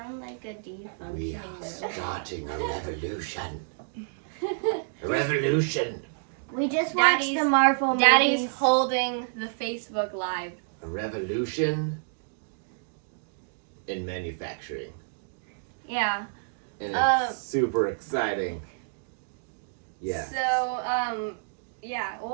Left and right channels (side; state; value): left; silent; digital silence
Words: like a defunctioning We are robot. starting a revolution. A revolution. We just watched the Marvel movies. Daddy's holding the Facebook Live. A revolution in manufacturing. Yeah. And it's super exciting. Yeah. So, yeah,